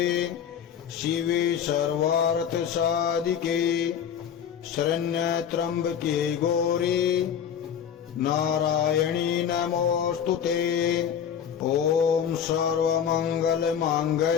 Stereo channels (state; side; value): quieter; right; 8.4 dB